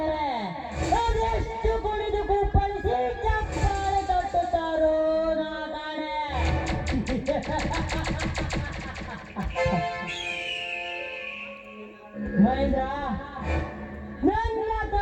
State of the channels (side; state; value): both; identical; correlation 1.00